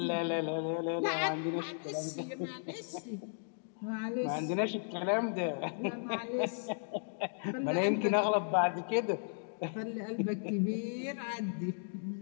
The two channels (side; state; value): right; silent; digital silence